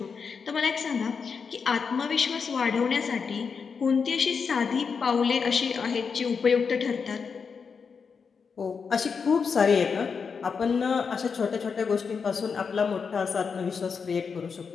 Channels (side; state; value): right; quieter; 5.7 dB